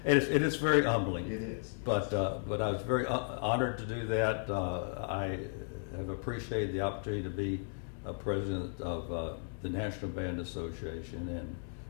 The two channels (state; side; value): silent; right; digital silence